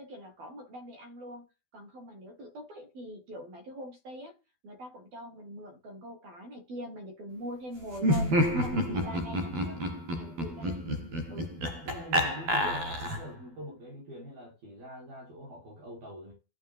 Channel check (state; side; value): late; left; 12 ms